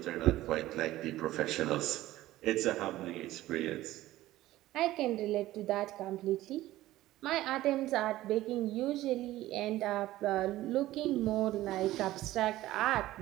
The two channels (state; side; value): quieter; left; 15.7 dB